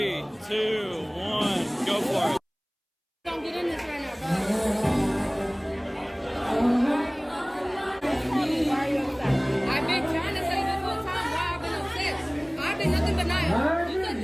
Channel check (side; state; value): both; identical; correlation 1.00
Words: 2, 1, go for it. Don't get in this right now, bro. I've been trying to say this whole time why I've been upset. I've been nothing but nice. You said